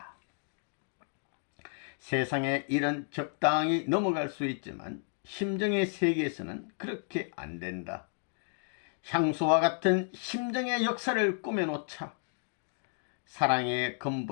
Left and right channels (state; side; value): silent; right; 56 dB below the other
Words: 세상의 일은 적당히 넘어갈 수 있지만 심정의 세계에서는 그렇게 안 된다. 향수와 같은 심정의 역사를 꾸며놓자. 사랑의